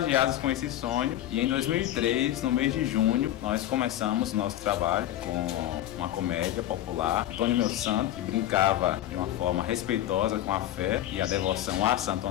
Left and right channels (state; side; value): quieter; right; 12.9 dB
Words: com esse sonho, e em 2003, no mês de junho, nós começamos o nosso trabalho com uma comédia popular, Antônio Meu Santo, que brincava de uma forma respeitosa com a fé e a devoção a Santo